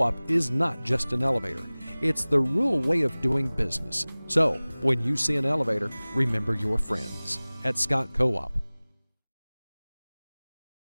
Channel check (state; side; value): inverted; both; correlation -1.00